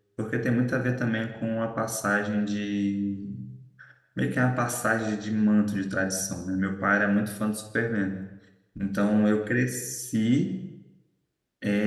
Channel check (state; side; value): identical; both; correlation 1.00